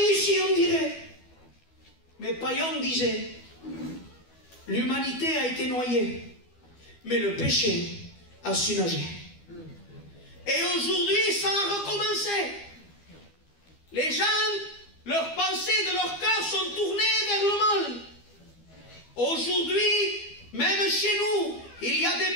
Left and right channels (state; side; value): late; right; 12 ms